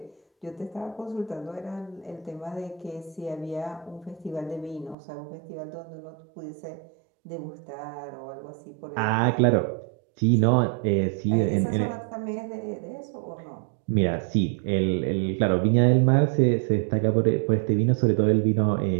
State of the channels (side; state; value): left; drops out; at 5.0 s